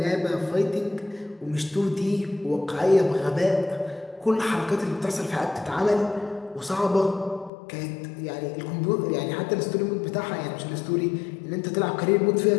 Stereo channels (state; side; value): drops out; right; at 7.5 s